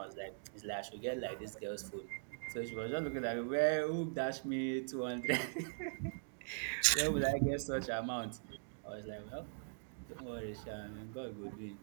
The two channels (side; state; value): left; silent; digital silence